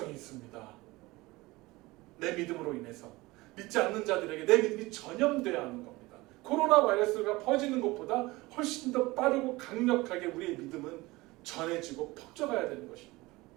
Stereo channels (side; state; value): left; quieter; 21.0 dB